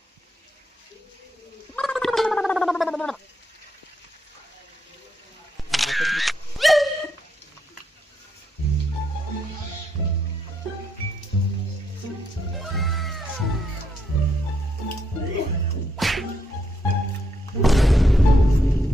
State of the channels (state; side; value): normal; both; correlation 0.77